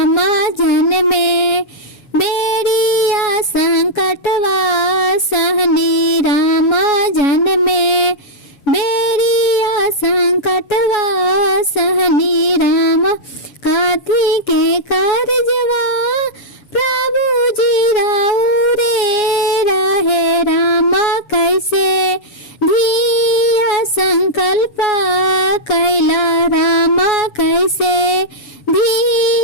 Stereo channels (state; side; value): late; right; 7.1 ms